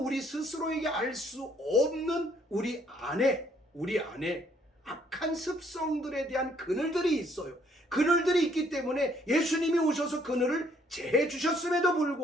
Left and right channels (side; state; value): both; normal; correlation 0.65